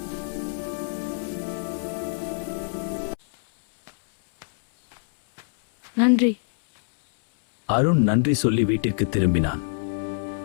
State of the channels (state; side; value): silent; right; 62 dB below the other